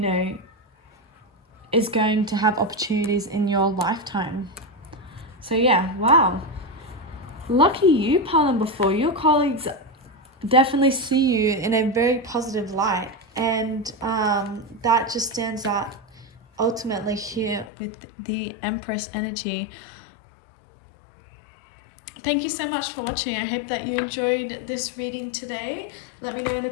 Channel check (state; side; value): drops out; right; at 17.7 s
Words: is going to have opportunities in your lifetime. So yeah, wow. Lucky you, pile number 4. Your colleagues definitely see you in a very positive light, and that just stands out ultimately here with the Empress energy. Thank you so much for watching. I hope that you enjoyed this reading today. Let me know in the